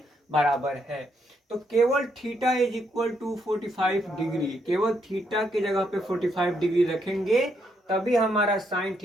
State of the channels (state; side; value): normal; both; correlation 0.76